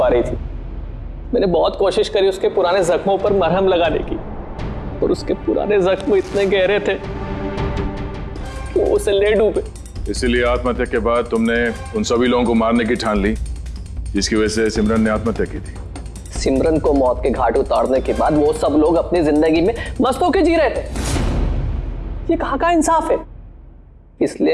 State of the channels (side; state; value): both; identical; correlation 1.00